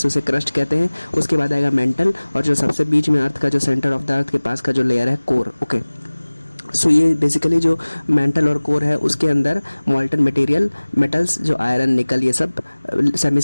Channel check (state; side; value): inverted; both; correlation -1.00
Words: उसे क्रस्ट कहते हैं, उसके बाद आएगा मेंटल, और जो सबसे बीच में अर्थ का जो सेंटर ऑफ द अर्थ के पास का जो लेयर है, कोर। ओके, सो ये बेसिकली जो मेंटल और कोर है उसके अंदर मॉल्टन मटेरियल, मेटल्स जो आयरन, निकल, ये सब सेमी